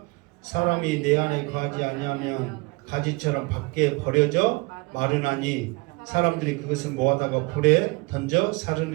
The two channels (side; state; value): left; quieter; 26.8 dB